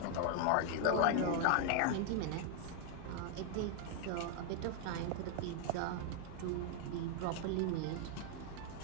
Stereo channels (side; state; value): both; different; correlation 0.00